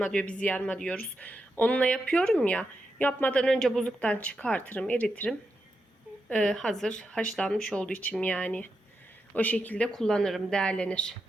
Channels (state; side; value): normal; both; correlation 0.86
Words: diyor, biz yarma diyoruz. Onunla yapıyorum ya. Yapmadan önce buzluktan çıkartırım, eritirim. Hazır haşlanmış olduğu için yani. O şekilde kullanırım, değerlenir.